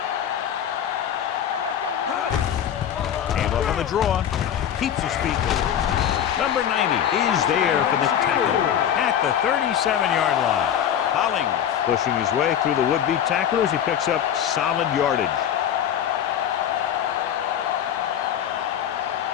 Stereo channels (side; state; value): right; quieter; 9.6 dB